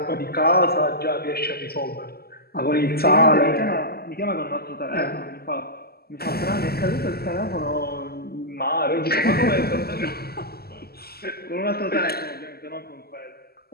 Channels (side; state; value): right; late; 0.46 ms